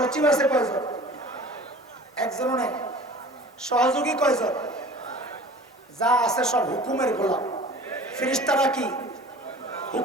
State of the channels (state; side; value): normal; both; correlation 0.43